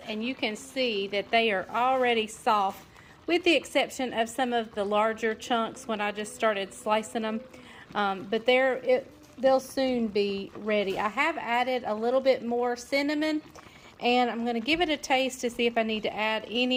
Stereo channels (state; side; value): identical; both; correlation 1.00